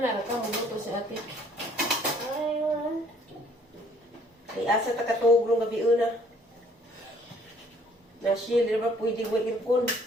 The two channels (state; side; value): normal; both; correlation 0.60